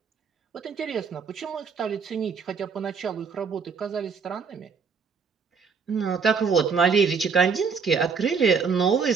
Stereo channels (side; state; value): left; quieter; 5.7 dB